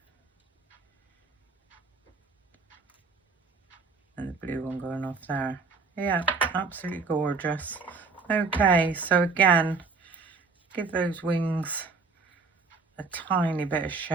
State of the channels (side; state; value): left; quieter; 4.6 dB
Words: And the blue one going off there. Yeah, absolutely gorgeous. Okay, so again, give those wings a tiny bit of